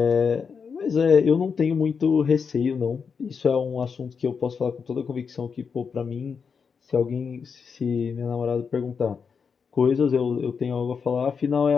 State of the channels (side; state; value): right; quieter; 5.9 dB